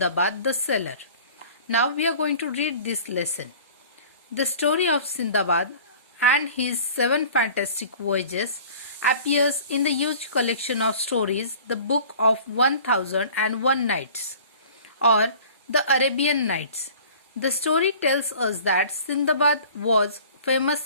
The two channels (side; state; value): both; inverted; correlation -0.46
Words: the Sailor. Now we are going to read this lesson. The story of Sindbad and his 7 fantastic voyages appears in the huge collection of stories, the Book of 1001 Nights, or the Arabian Nights. The story tells us that Sindbad was a famous